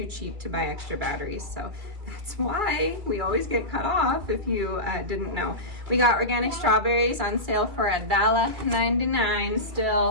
cheap to buy extra batteries, so that's why we always get cut off, if you didn't know. We got organic strawberries on sale for $1.99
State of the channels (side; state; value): left; late; 2.3 ms